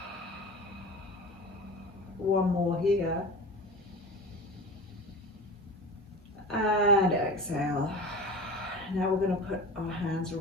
One more here. And exhale. Now we're going to put our hands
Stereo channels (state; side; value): normal; both; correlation 0.33